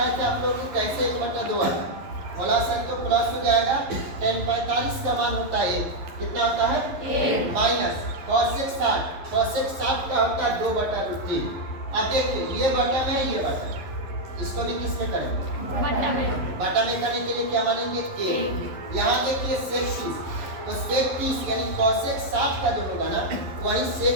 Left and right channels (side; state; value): left; late; 11 ms